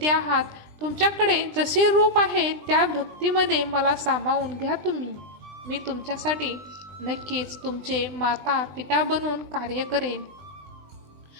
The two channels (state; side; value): late; left; 20 ms